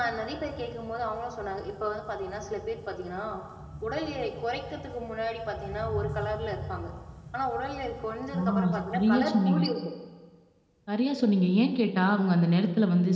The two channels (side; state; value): both; identical; correlation 1.00